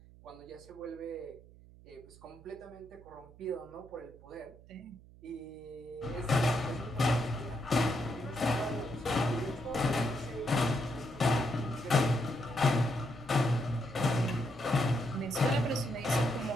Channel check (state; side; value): noise; right; hum, 22 dB below the sound